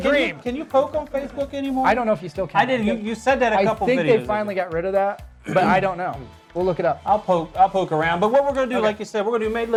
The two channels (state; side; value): identical; both; correlation 1.00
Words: Can you poke on Facebook anymore? I don't know if you still can. I did. You said that a couple videos I think they finally got rid of that, but I don't know. We'll look it up. I'll poke around. But what we're going to do, like you said, we're going to do Made